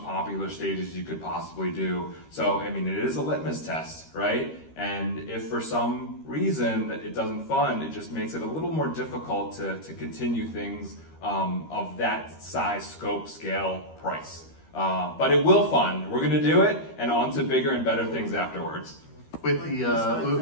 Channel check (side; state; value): right; late; 13 ms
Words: popular stages you could possibly do. So, I mean, it is a litmus test, right? And if for some reason it doesn't fund, it just makes it a little more difficult to continue things of that size, scope, scale, price. But it will fund. We're going to do it, and on to bigger and better things afterwards. With the